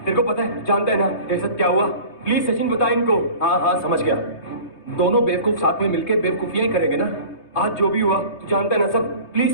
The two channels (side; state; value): right; late; 3.2 ms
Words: को पता है, जानता है ना तेरे साथ क्या हुआ? प्लीज सचिन बता इनको। हाँ हाँ समझ गया, दोनों बेवकूफ साथ में मिलकर बेवकूफियां ही करेंगे ना। आज जो भी हुआ तू जानता है ना सब।